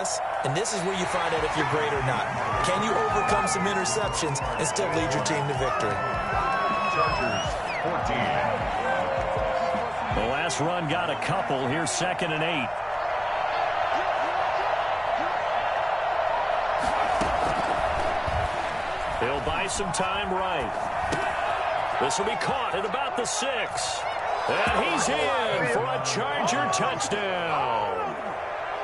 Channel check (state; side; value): identical; both; correlation 1.00